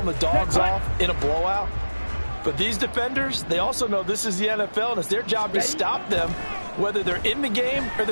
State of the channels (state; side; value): inverted; both; correlation -1.00